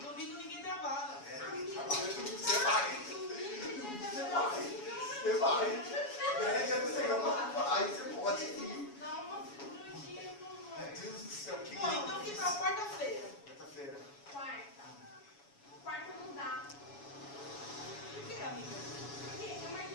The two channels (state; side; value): late; right; 7.1 ms